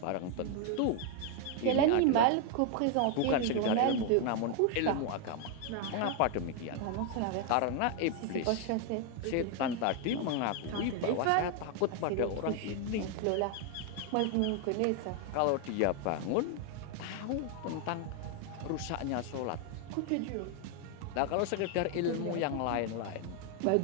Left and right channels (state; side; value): different; both; correlation 0.01